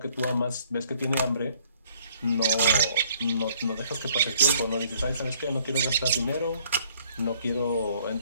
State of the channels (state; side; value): inverted; both; correlation -0.62